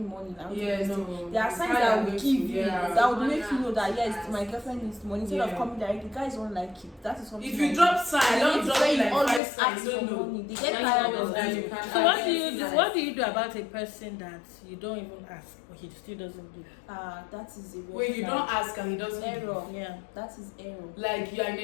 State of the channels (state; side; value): drops out; right; at 9.4 s